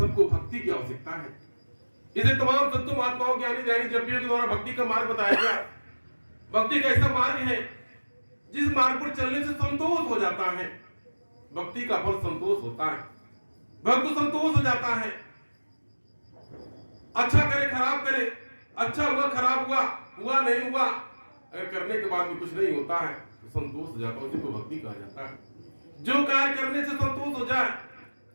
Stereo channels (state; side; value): inverted; both; correlation -1.00